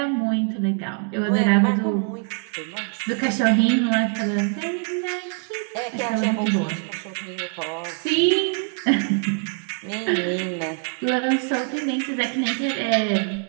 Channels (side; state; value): left; quieter; 39.5 dB